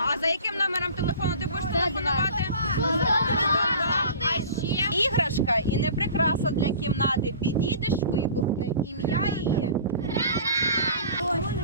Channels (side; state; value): both; inverted; correlation -0.42